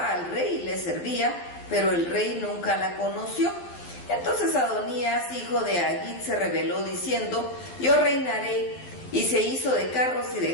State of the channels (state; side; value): late; right; 12 ms